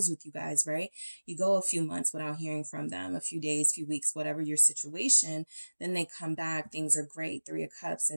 with you guys, right? You go a few months without hearing from them, a few days, few weeks, whatever your situation, then they come back. Things are great. 3 of Cups,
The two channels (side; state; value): both; inverted; correlation -1.00